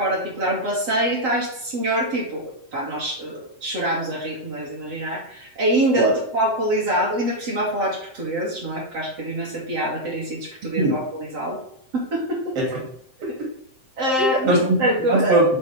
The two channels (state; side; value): late; left; 7.7 ms